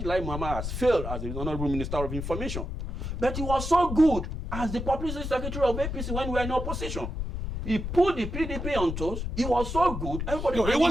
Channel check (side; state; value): left; noise; rumble, 5 dB below the sound